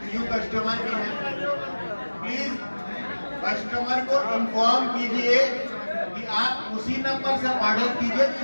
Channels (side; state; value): both; inverted; correlation -1.00